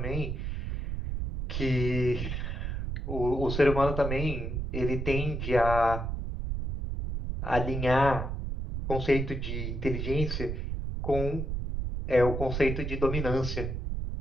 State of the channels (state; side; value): noise; right; rumble, 3 dB below the sound